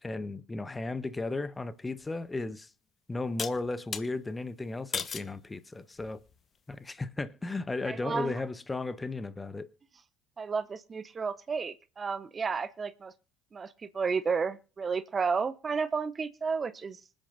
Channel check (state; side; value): normal; both; correlation 0.87